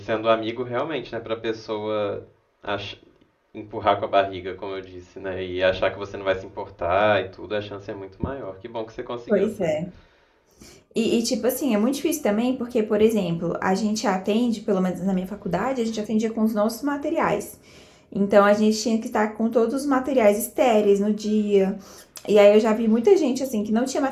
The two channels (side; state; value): both; identical; correlation 1.00